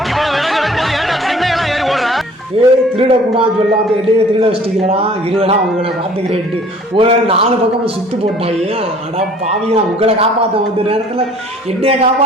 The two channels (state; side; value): normal; both; correlation 0.52